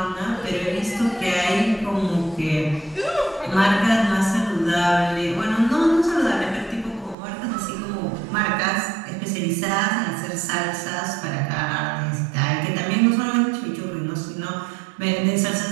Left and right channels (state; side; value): drops out; left; at 7.2 s